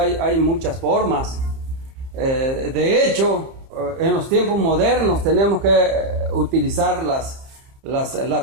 muchas formas. De hecho, en los tiempos modernos tenemos que utilizar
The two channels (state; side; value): late; left; 30 ms